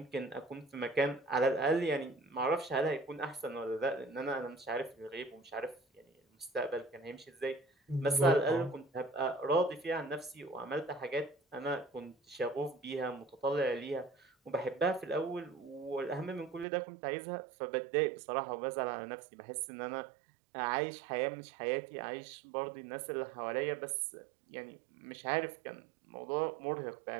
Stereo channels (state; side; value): drops out; left; at 16.7 s